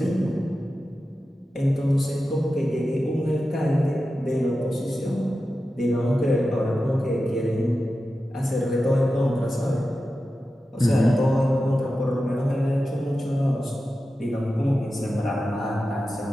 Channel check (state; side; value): normal; both; correlation 0.92